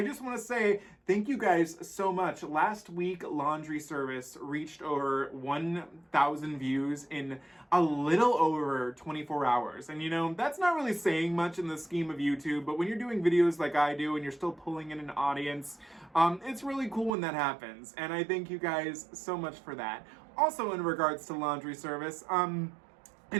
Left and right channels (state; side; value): drops out; left; at 17.1 s